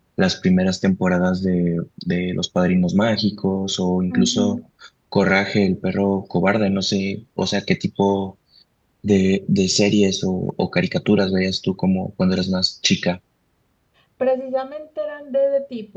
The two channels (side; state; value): both; identical; correlation 1.00